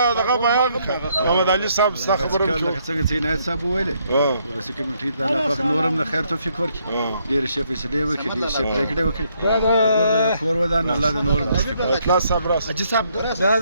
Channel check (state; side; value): inverted; both; correlation -0.72